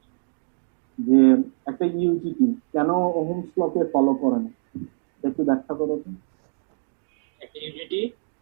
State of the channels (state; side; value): silent; left; digital silence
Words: যে একটা ইউজিটি কেন ওহমস লকে ফলো করে না, একটু ব্যাখ্যা করো তো। একটা ইউজিটি